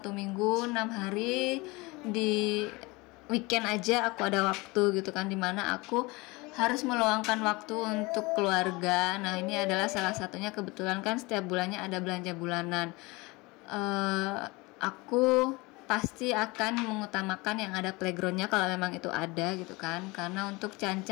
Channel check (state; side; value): quieter; right; 24.2 dB